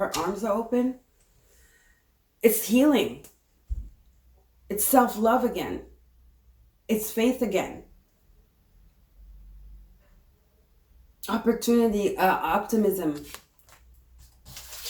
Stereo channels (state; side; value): identical; both; correlation 1.00